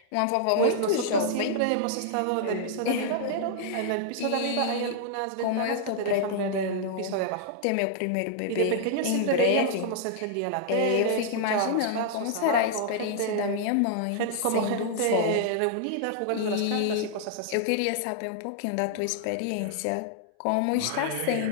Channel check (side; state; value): both; different; correlation -0.01